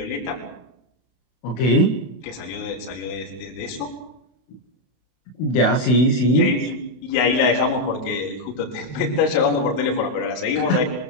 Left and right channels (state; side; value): late; right; 32 ms